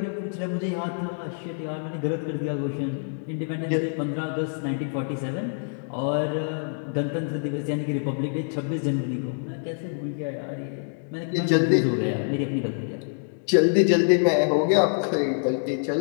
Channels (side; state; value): right; silent; digital silence